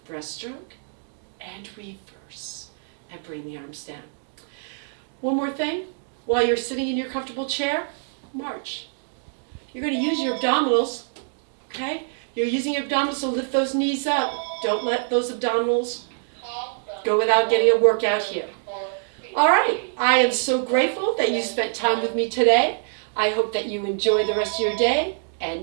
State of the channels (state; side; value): silent; left; digital silence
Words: breaststroke, and reverse, and bring the arms down. One more thing, while you're sitting in your comfortable chair, march. You're going to use your abdominals, okay? You're using your abdominals to lift those knees up. Don't let those abdominals go without getting a workout here. All right, I am so grateful that you spent time with me today. I hope that you enjoy the rest of your day, and